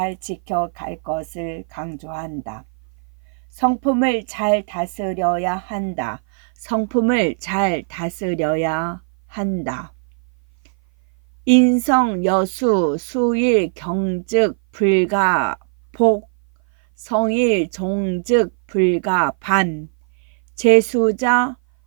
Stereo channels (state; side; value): silent; left; 57 dB below the other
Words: 지켜갈 것을 강조한다. 성품을 잘 다스려야 한다. 성품을 잘 다스려야 한다. 인성 여수 수일 경즉 불가 복 성일 종즉 불가 반 재수자